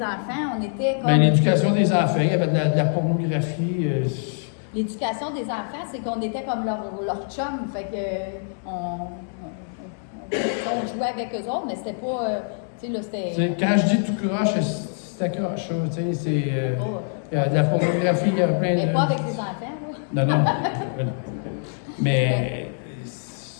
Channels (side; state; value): right; silent; digital silence